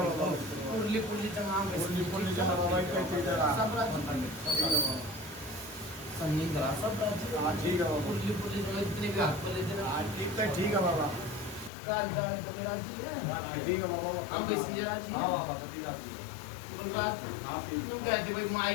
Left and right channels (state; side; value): drops out; right; at 11.7 s